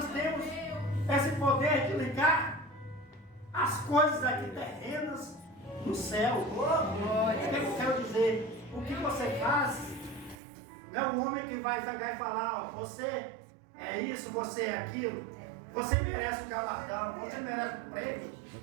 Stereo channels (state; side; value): drops out; left; at 10.4 s